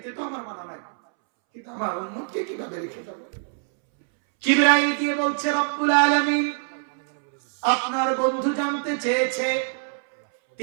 তো আমার মানা নাই, কিন্তু আমার উম্মতকে কিভাবে রেখে যাব? জিবরাইল দিয়ে বলছে রব্বুল আলামিন আপনার বন্ধু জানতে চেয়েছে,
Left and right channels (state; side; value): silent; left; 62 dB below the other